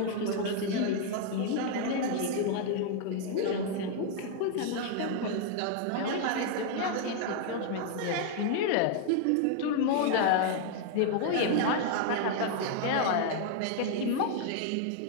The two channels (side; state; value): both; different; correlation 0.00